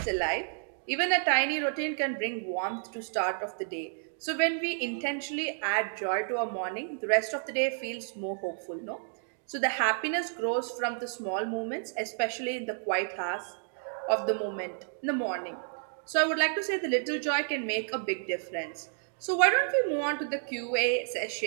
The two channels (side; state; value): left; silent; digital silence